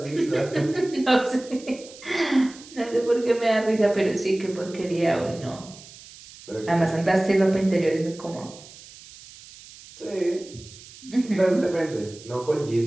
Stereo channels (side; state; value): right; noise; hiss, 19 dB below the sound